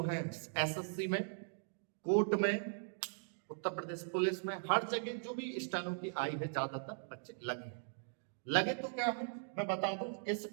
है एसएससी में, कोर्ट में, उत्तर प्रदेश पुलिस में, हर जगह जो भी स्टेनो की आई है ज्यादातर बच्चे लगे तो क्या है, मैं बता दूं इस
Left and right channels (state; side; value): silent; left; digital silence